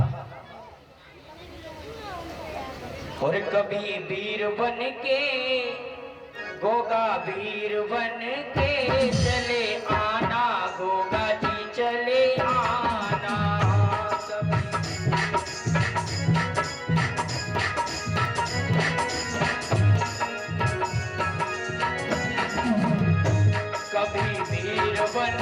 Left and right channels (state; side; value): identical; both; correlation 1.00